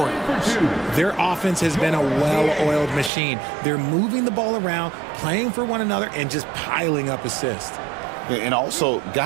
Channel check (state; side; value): drops out; left; at 3.1 s